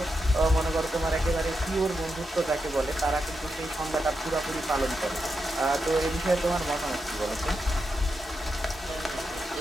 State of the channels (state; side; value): normal; both; correlation 0.86